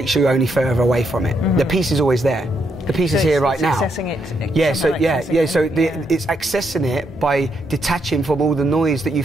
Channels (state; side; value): normal; both; correlation 0.78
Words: you only further away from it. The peace is always there. The peace is here right now. Accessing it. It's accessing it by detaching from all the noise that you